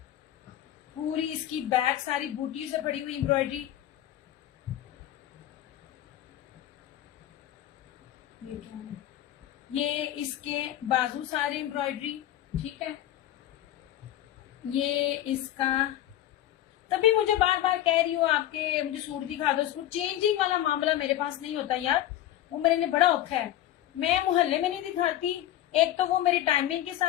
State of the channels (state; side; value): quieter; right; 12.9 dB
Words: पूरी इसकी बैक सारी बूटियों से भरी हुई एम्ब्रॉयडरी। ये इसके बाजू सारे एम्ब्रॉयडरी, ठीक है। ये इसका, तभी मुझे बार बार कह रही हूँ आपके मुझे सूट दिखा दो। सूट चेंजिंग वाला मामला मेरे पास नहीं होता यार, वो मेरे लिए बड़ा औखा है। मैं मोहल्ले में नहीं दिखाती, एक तो वो मेरी टाइमिंग के